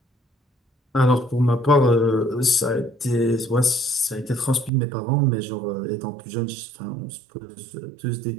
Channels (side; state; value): left; drops out; at 4.7 s